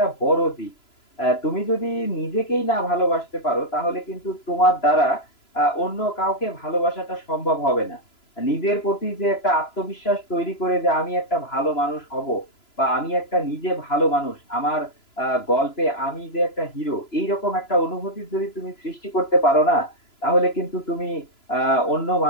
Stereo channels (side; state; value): right; late; 3.0 ms